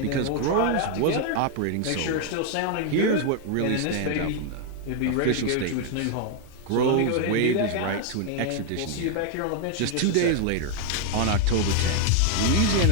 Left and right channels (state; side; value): different; both; correlation 0.00